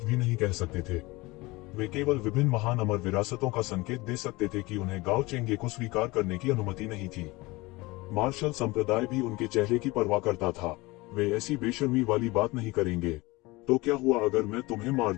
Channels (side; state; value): right; quieter; 22.2 dB